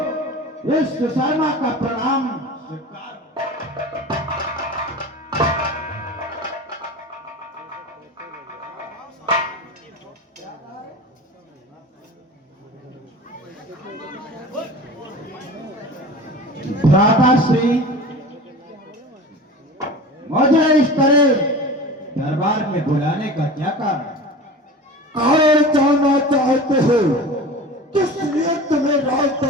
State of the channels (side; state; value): both; normal; correlation 0.35